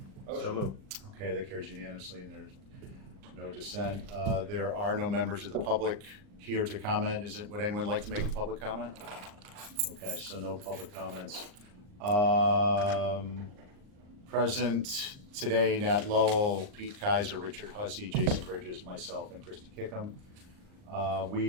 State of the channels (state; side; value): late; left; 39 ms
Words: So moved. Okay, that carries unanimously and there's no dissent. There are no members of the public here to comment. Would anyone like to make a public comment? Okay, so no public comments. Present today, Nat Lowell, Pete Kaiser, Richard Hussey, Jason Bridges, myself, and Christy Kickham.